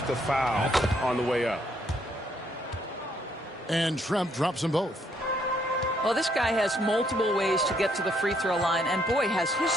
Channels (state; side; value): normal; both; correlation 0.70